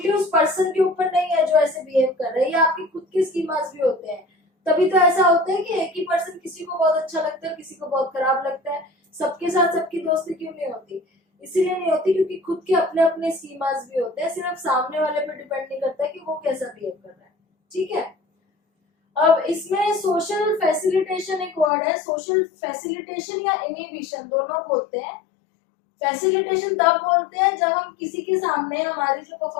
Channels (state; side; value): drops out; right; at 21.7 s